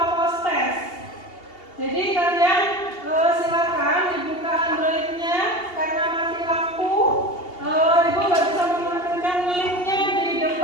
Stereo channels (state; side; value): late; right; 2.8 ms